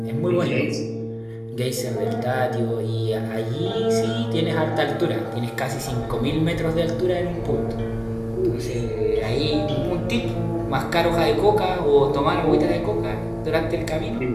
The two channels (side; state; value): both; identical; correlation 1.00